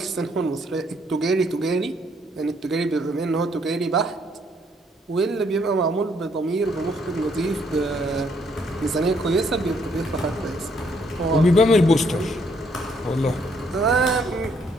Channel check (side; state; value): both; normal; correlation 0.69